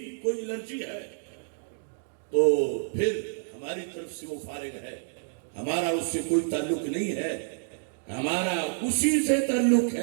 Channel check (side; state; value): left; silent; digital silence